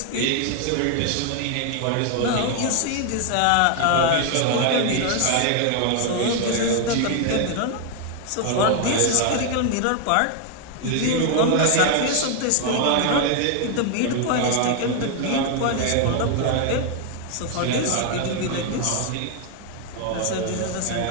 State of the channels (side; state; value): both; different; correlation 0.00